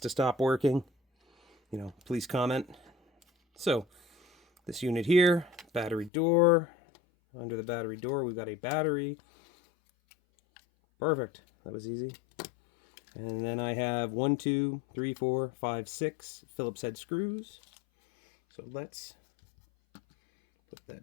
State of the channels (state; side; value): drops out; right; at 6.1 s